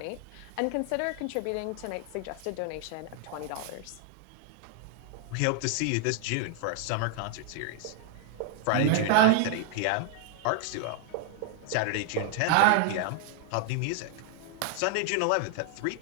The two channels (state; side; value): different; both; correlation 0.00